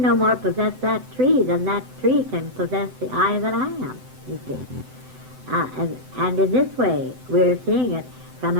no more possess that tree than that tree can possess the I that I am, you see. And in this way, we're seeing it from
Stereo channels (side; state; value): left; late; 7.9 ms